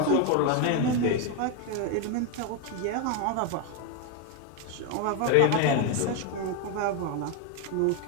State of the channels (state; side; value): different; both; correlation 0.02